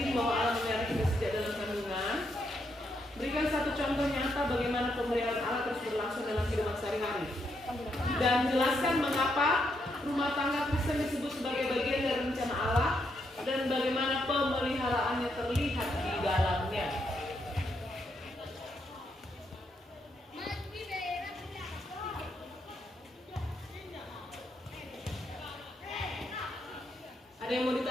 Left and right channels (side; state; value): both; normal; correlation 0.78